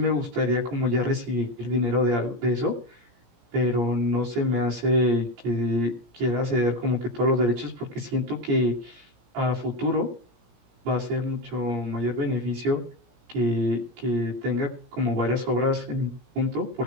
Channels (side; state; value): left; late; 17 ms